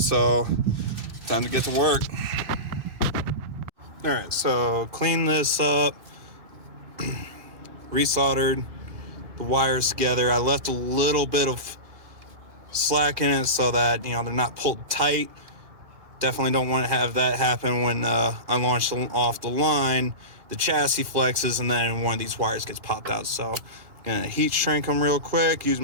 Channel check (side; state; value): left; late; 2.4 ms